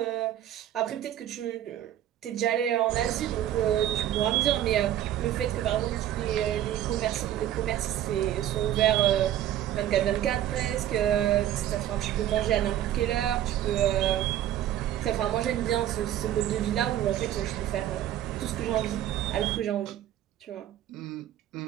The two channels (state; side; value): quieter; left; 12.0 dB